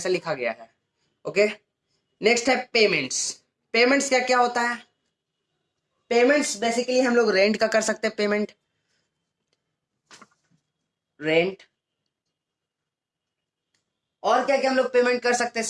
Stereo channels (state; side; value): identical; both; correlation 1.00